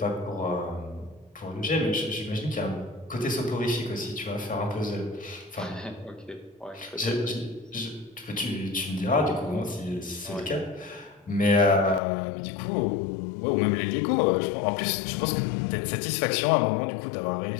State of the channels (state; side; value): drops out; right; at 12.0 s